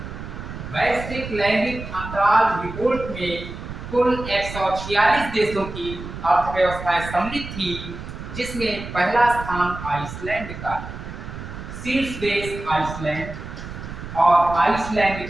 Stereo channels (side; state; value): right; noise; rumble, 10 dB below the sound